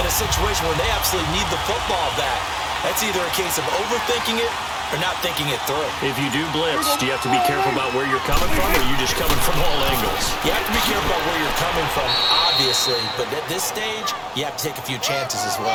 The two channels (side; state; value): both; identical; correlation 1.00